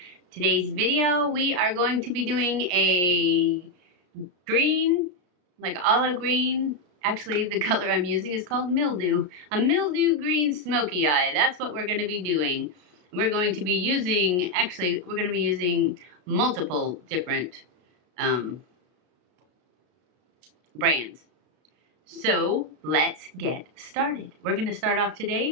Today's video we are going to be doing a green, like olive green. Actually the color I'm using is called Mildew. A Mildew Green Smokey Eye. That's what we're going to be doing. We're going to be using, multiple different brands. So let's get started. We're going to start off today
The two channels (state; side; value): late; left; 33 ms